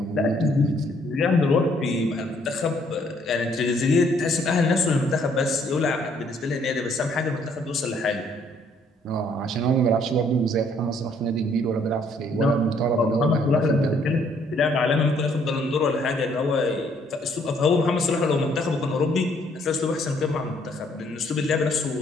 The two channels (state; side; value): normal; both; correlation 0.65